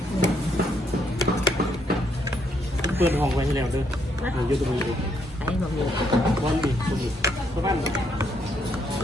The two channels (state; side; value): normal; both; correlation 0.74